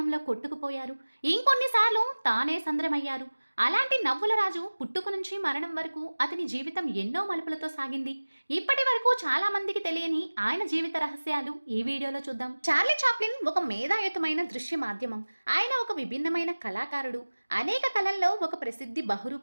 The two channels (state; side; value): inverted; both; correlation -1.00